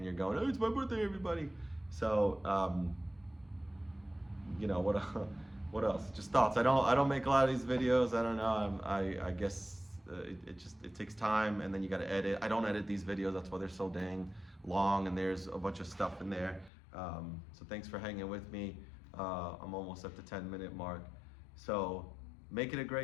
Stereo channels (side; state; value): right; drops out; at 16.7 s